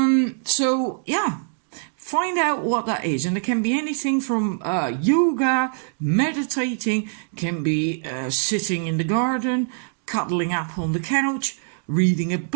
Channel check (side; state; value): left; silent; digital silence